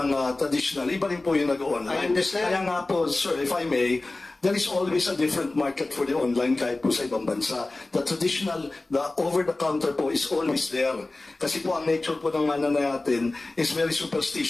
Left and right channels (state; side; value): quieter; right; 3.0 dB